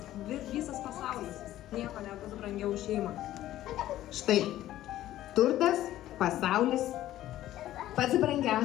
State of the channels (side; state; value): right; quieter; 13.8 dB